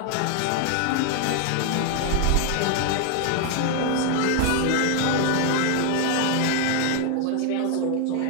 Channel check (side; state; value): both; different; correlation 0.00